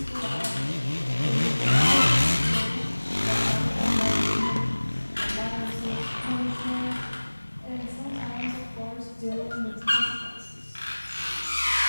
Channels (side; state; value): both; inverted; correlation -1.00